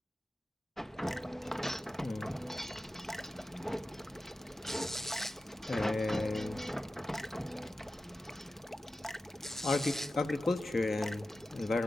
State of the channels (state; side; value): normal; both; correlation 0.93